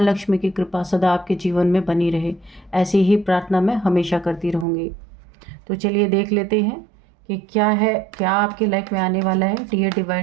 की कृपा सदा आपके जीवन में बनी रहे, ऐसी ही प्रार्थना मैं हमेशा करती रहूँगी। तो चलिए देख लेते हैं कि क्या है, क्या आपकी लाइफ में आने वाला है। Dear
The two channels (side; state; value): left; drops out; at 4.7 s